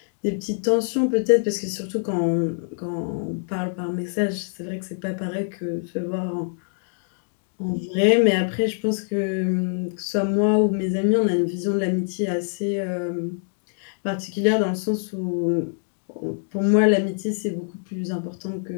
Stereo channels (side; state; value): right; silent; digital silence